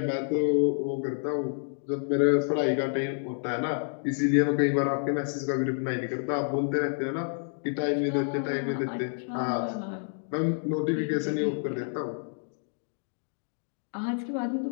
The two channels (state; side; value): silent; right; digital silence